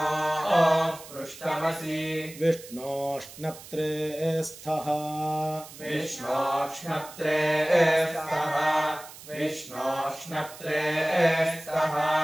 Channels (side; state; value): right; noise; hiss, 17 dB below the sound